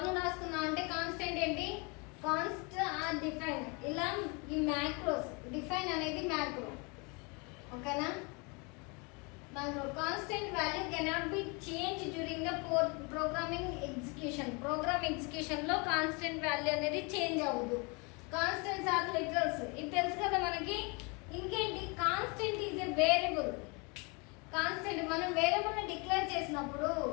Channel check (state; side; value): quieter; right; 30.7 dB